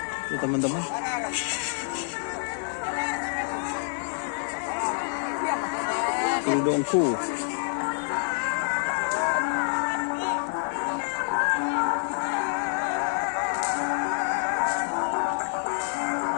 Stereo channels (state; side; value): silent; right; digital silence